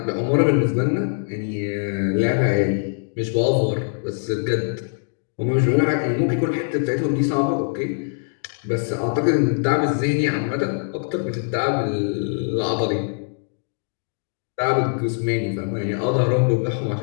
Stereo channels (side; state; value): right; silent; digital silence